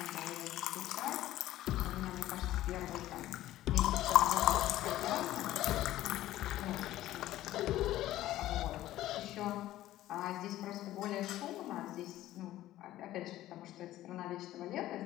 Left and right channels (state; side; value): quieter; right; 14.6 dB